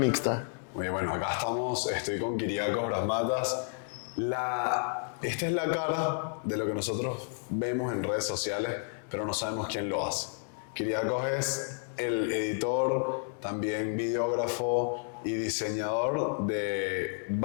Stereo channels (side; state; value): right; silent; 57 dB below the other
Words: Muy bien, bueno, acá estamos, estoy con Kyriakos Brasmatas. Esta es la cara de lo que nosotros vemos en redes sociales, pero no sabemos quién lo hace. Kyriakos es el editor, también videógrafo y diseñador de